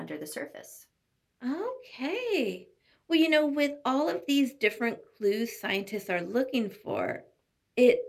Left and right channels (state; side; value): identical; both; correlation 1.00